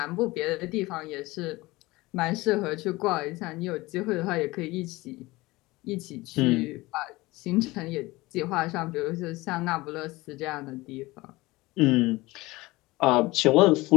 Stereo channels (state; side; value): quieter; right; 20.7 dB